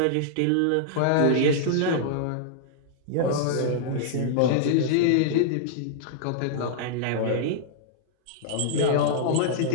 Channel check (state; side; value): different; both; correlation -0.02